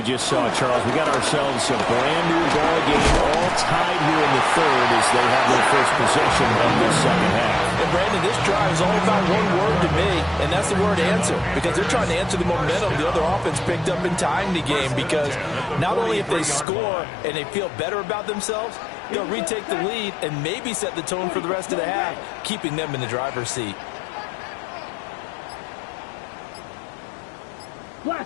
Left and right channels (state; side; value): drops out; right; at 16.7 s